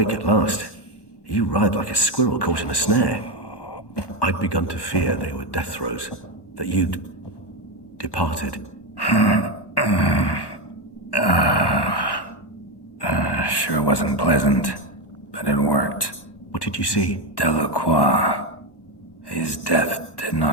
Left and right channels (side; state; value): right; late; 1.1 ms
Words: at last. You writhed like a squirrel caught in a snare. I'd begun to fear they were death throes, that you'd departed. Sure wasn't pleasant, but it worked. What did you see? Delacroix. His death did